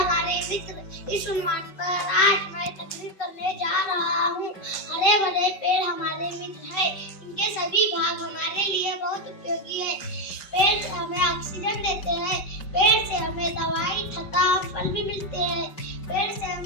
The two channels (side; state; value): right; late; 5.3 ms